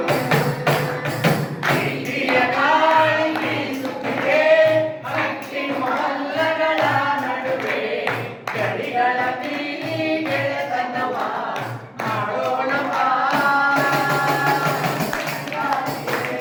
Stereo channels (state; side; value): identical; both; correlation 1.00